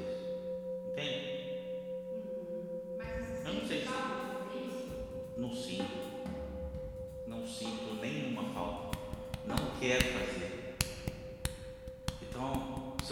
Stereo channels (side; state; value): both; identical; correlation 1.00